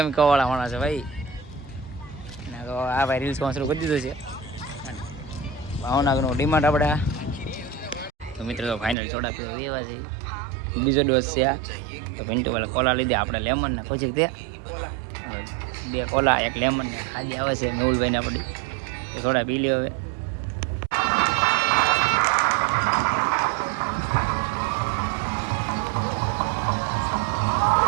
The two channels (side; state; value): left; drops out; at 9.0 s